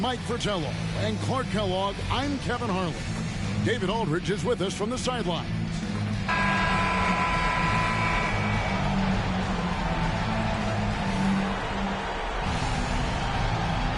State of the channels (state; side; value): identical; both; correlation 1.00